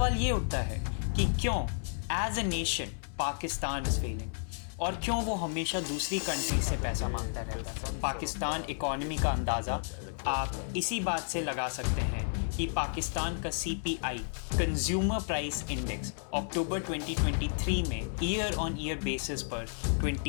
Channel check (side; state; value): right; silent; digital silence